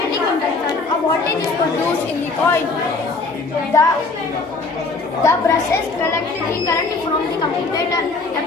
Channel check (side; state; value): right; quieter; 3.9 dB